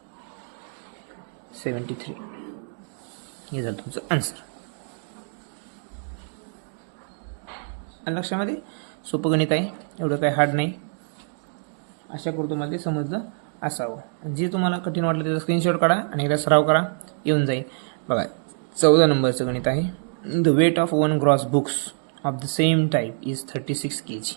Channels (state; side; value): silent; left; 56 dB below the other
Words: 73. हे झालं तुमचं आन्सर. लक्षामध्ये सोपं गणित आहे, एवढं काय हार्ड नाही. आशा करतो तुम्हाला ते समजलं असावं. जे तुम्हाला कठीण वाटलं त्याचा स्क्रीनशॉट काढा आणि एकदा सराव करा, येऊन जाईल. बघा 14 नंबरचं गणित आहे. The weight of 1 gross books of the same type is 36 kg